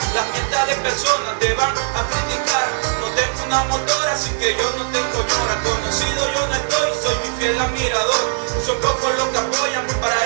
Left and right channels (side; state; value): left; silent; digital silence